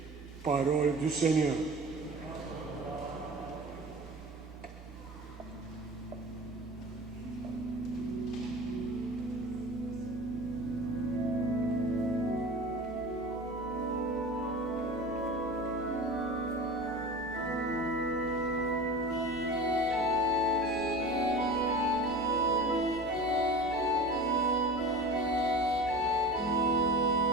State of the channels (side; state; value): both; normal; correlation 0.35